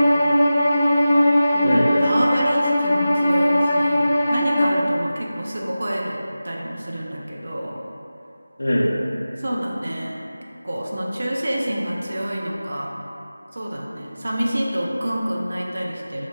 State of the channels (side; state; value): both; inverted; correlation -0.95